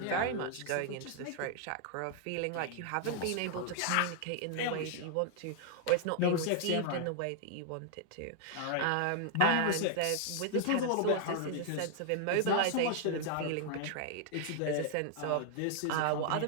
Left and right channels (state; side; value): different; both; correlation 0.00